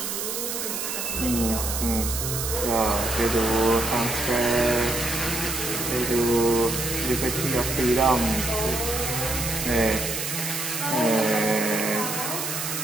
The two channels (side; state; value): right; noise; hiss, 3 dB below the sound